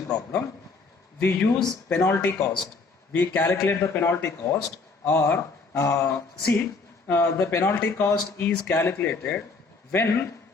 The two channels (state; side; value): quieter; right; 4.2 dB